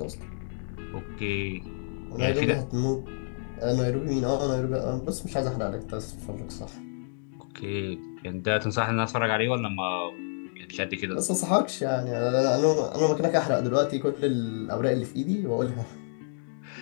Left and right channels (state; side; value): silent; right; digital silence